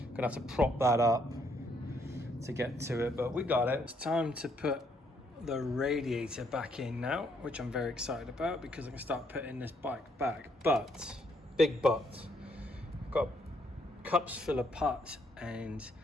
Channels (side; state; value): both; normal; correlation 0.71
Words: gonna have to prop that up to get to it, but we got it. It's time to put the radiator back in now, which I'm very excited about because I can start putting this bike back. But, big but, I've got cups full of parts and